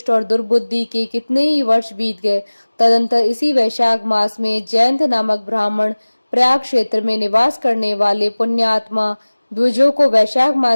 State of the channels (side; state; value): both; inverted; correlation -1.00